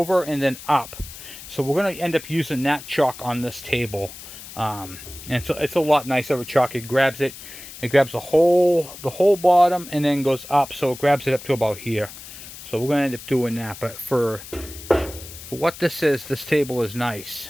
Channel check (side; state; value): left; noise; hiss, 14 dB below the sound